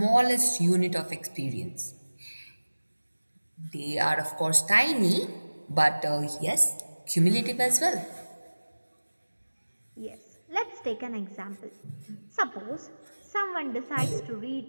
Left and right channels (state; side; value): inverted; both; correlation -1.00